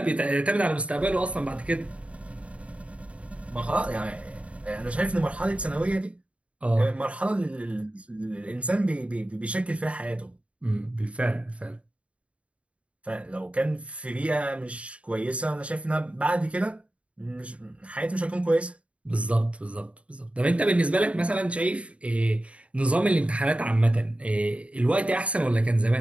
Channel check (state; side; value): late; left; 0.063 ms